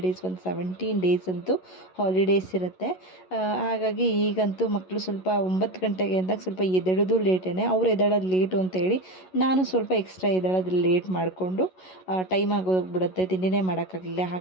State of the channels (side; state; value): right; late; 11 ms